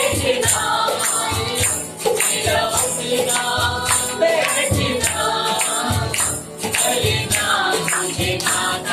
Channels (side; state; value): both; identical; correlation 1.00